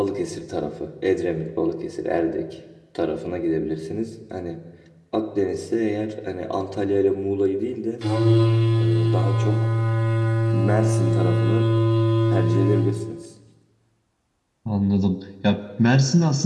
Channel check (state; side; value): identical; both; correlation 1.00